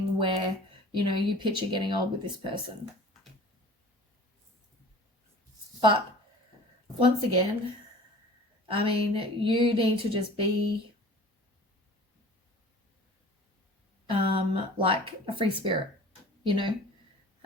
where, you know, you picture getting old with this person. But once again, I mean, you need to just be like a free spirit, you know,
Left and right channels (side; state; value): both; normal; correlation 0.44